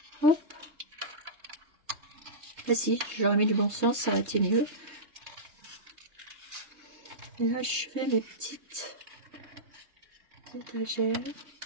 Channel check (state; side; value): late; left; 3.2 ms